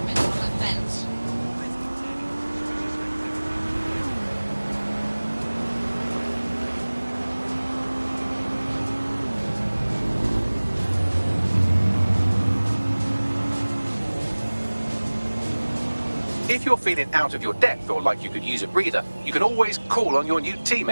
If you're feeling out of your depth or like you could use a breather, you can always call on your new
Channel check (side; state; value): both; inverted; correlation -1.00